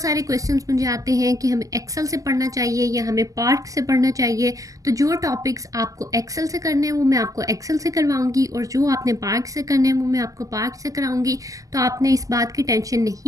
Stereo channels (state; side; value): late; left; 0.17 ms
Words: सारे क्वेश्चंस मुझे आते हैं कि हमें एक्सेल से पढ़ना चाहिए या हमें पार्ट से पढ़ना चाहिए। तो जो टॉपिक्स आपको एक्सेल से करने हैं वो मैं आपको एक्सेल से करवाऊंगी और जो आपने पार्ट से करने हैं वो मैं आपको पार्ट से कराऊंगी। तो आपने इस बात की टेंशन